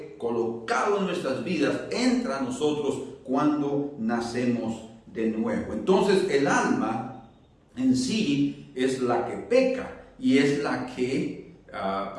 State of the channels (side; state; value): both; identical; correlation 1.00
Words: colocado en nuestras vidas, entra a nosotros cuando nacemos de nuevo. Entonces, el alma en sí es la que peca y es la que